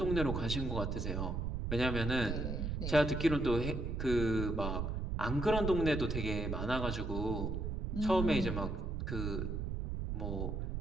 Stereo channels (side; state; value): right; noise; rumble, 2 dB below the sound